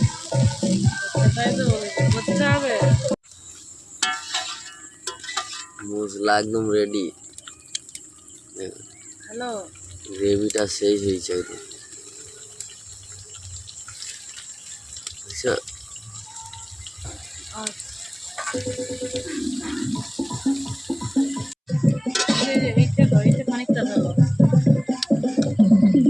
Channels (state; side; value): identical; both; correlation 1.00